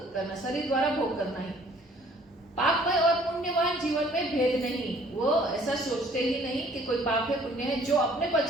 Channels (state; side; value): normal; both; correlation 0.57